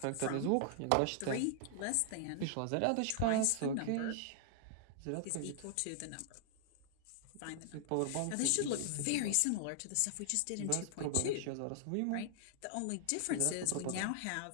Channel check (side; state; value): both; different; correlation -0.01